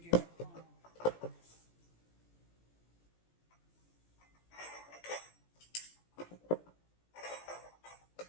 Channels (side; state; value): right; late; 17 ms